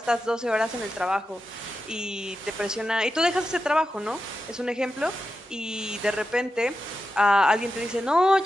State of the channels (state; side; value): normal; both; correlation 0.90